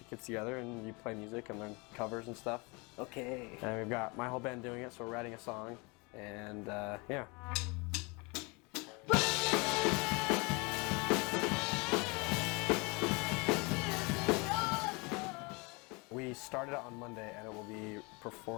of kids together and you play music and learn covers and stuff. Okay. And we've got my whole band doing it, so we're writing a song, and yeah. We started it on Monday, and we're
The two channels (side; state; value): right; quieter; 28.6 dB